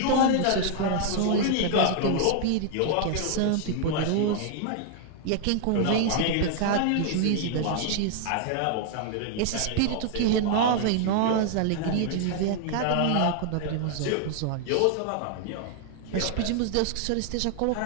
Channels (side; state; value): both; different; correlation 0.00